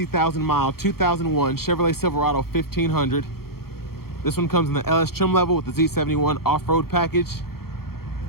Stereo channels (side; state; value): right; late; 0.94 ms